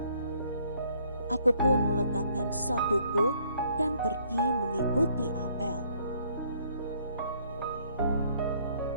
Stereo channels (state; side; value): inverted; both; correlation -0.65